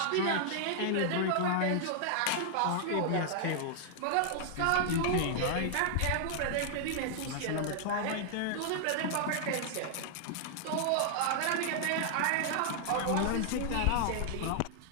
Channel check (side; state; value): both; different; correlation -0.01